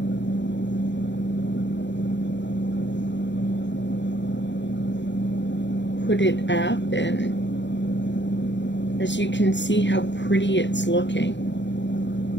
put it up, and as you can see how pretty it's looking.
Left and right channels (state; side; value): late; right; 0.52 ms